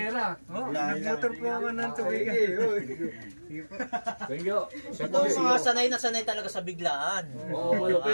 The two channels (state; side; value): inverted; both; correlation -1.00